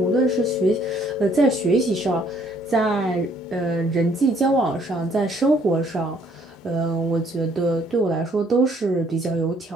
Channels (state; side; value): normal; both; correlation 0.64